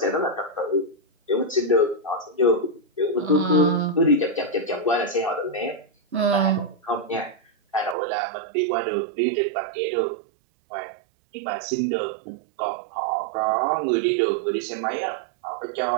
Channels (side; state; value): left; drops out; at 8.0 s